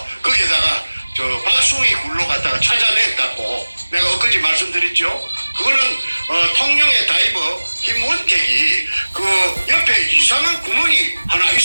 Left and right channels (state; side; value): inverted; both; correlation -1.00